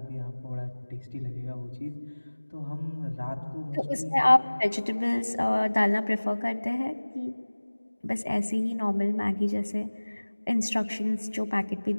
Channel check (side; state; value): both; inverted; correlation -1.00